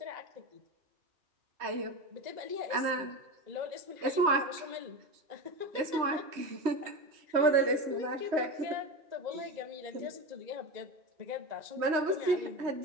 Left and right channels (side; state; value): left; late; 3.1 ms